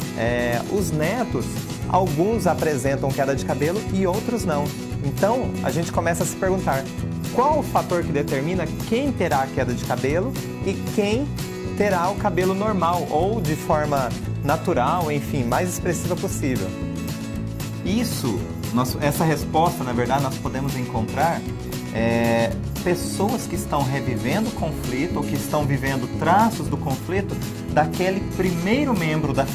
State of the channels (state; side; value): identical; both; correlation 1.00